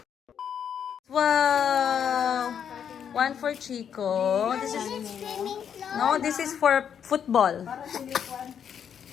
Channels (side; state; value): right; quieter; 8.2 dB